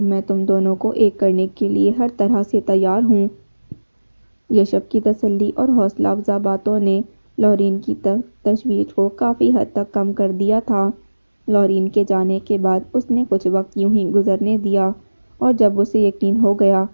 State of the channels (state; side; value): inverted; both; correlation -1.00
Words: تم دونوں کو ایک کرنے کے لیے ہر طرح سے تیار ہوں۔ یشب کی تسلی اور حوصلہ افزا باتوں نے لورین کی تشویش کو کافی حد تک کم کر دیا تھا۔ لورین کے جانے کے بعد اس نے کچھ وقت یوں ہی گزرنے دیا اور جب اسے یقین ہو گیا